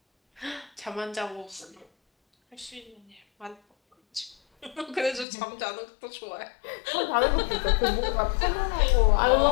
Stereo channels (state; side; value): drops out; right; at 5.2 s